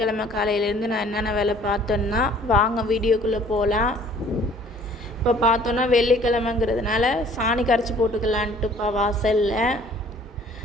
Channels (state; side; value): normal; both; correlation 0.54